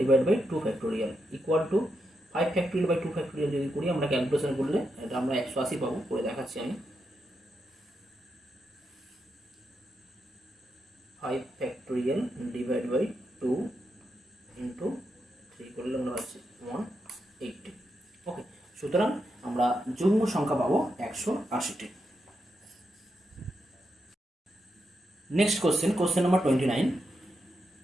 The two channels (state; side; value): normal; both; correlation 0.85